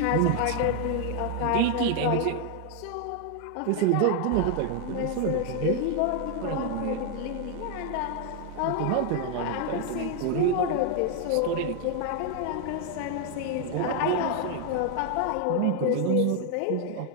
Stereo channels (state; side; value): different; both; correlation 0.00